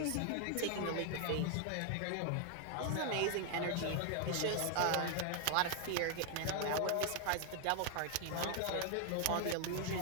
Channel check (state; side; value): different; both; correlation 0.00